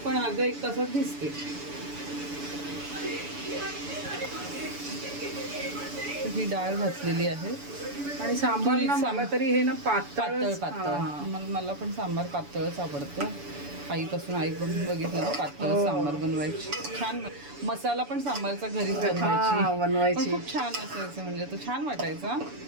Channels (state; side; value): late; left; 7.0 ms